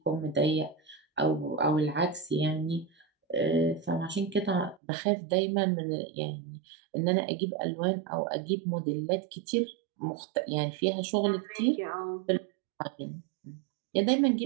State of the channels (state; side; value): drops out; left; at 4.8 s